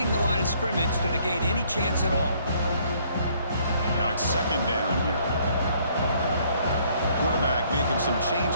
the line of scrimmage to negate any chance at all. Now it's second down here. Quarterback making some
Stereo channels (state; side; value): inverted; both; correlation -0.64